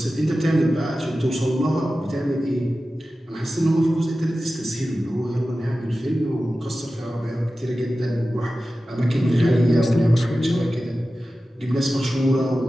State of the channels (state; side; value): normal; both; correlation 0.94